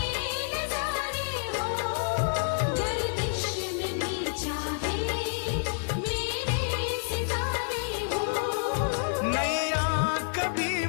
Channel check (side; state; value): right; silent; 59 dB below the other